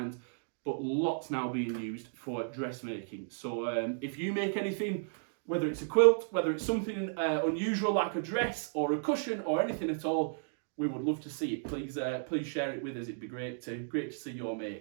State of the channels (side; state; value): left; silent; digital silence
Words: but lots now being used for dressmaking. So if you make anything, whether it's a quilt, whether it's something unusual like a dress or a cushion or anything at all, we would love to see it. Please share it with us. It'd be great to see your